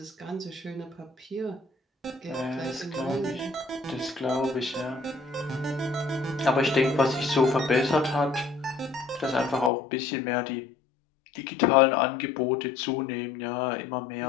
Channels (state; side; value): drops out; right; at 9.7 s